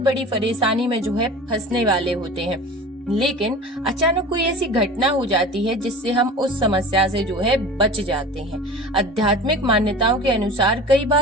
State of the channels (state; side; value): normal; both; correlation 0.37